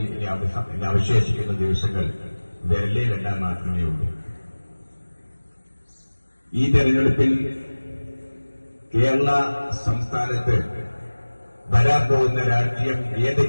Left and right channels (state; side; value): inverted; both; correlation -1.00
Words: ഇനി അവശേഷിക്കുന്ന ദിവസങ്ങൾ വിരലിലെണ്ണാൻ മാത്രമേ ഉള്ളൂ. ഈ തെരഞ്ഞെടുപ്പിൽ കേരള സംസ്ഥാനത്ത് വരാൻ പോകുന്ന രാഷ്ട്രീയം